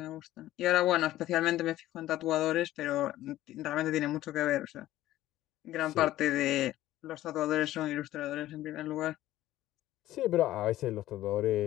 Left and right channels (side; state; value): right; quieter; 14.7 dB